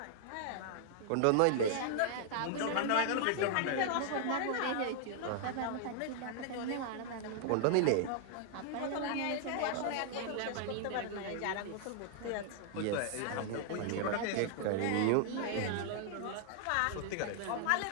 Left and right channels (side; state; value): both; different; correlation -0.01